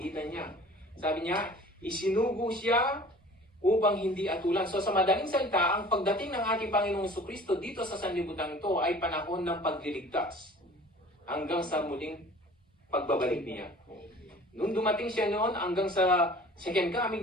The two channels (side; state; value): both; normal; correlation 0.46